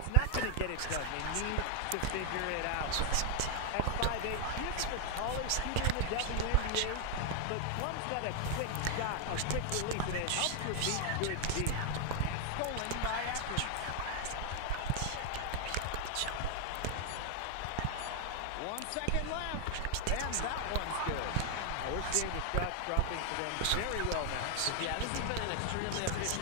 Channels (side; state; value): both; different; correlation 0.01